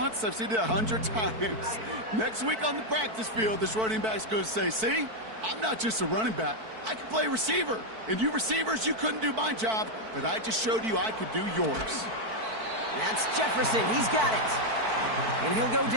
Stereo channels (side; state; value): left; late; 4.5 ms